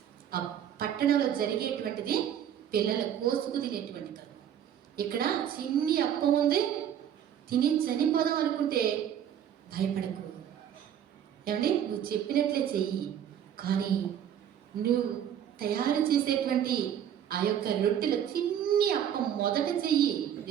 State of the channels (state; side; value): quieter; left; 9.7 dB